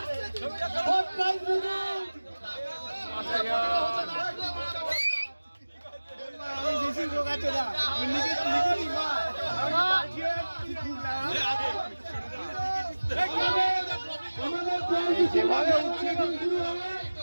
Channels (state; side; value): inverted; both; correlation -1.00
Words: ফোর্থ প্রাইজ বিদু বেশি লোক আছে না